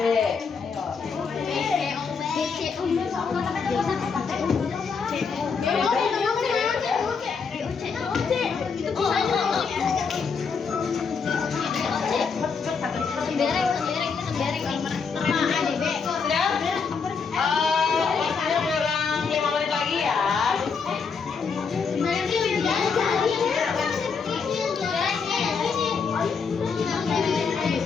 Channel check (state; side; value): quieter; right; 5.5 dB